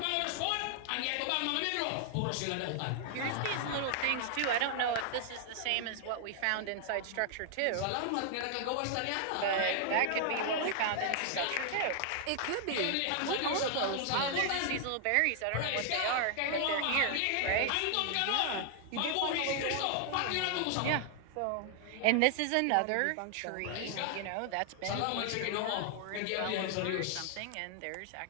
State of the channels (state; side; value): different; both; correlation 0.00